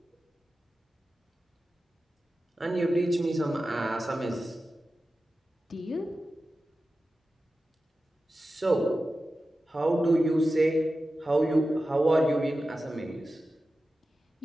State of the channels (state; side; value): normal; both; correlation 0.93